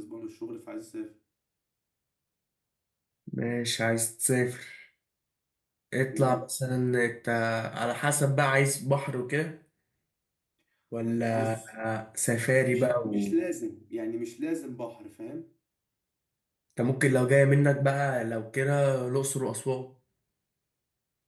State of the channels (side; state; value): both; identical; correlation 1.00